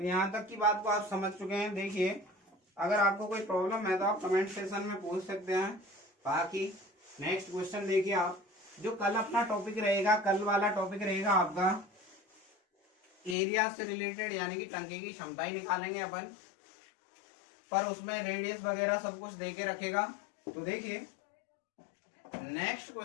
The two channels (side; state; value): right; drops out; at 13.4 s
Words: यहाँ तक की बात को आप समझ चुके हैं। देखिए, अगर आपको कोई प्रॉब्लम है तो आप कमेंट सेक्शन में पूछ सकते हैं। बाकी नेक्स्ट क्वेश्चन देखिए आप, जो कल अपना टॉपिक रहेगा, कल वाला टॉपिक रहेगा आपका एरिया से रिलेटेड, यानी कि टंकी की क्षमता ही निकालेंगे अपन, पर उसमें रेडियस वगैरह सब कुछ देके रखेगा। तो देखिए नेक्स्ट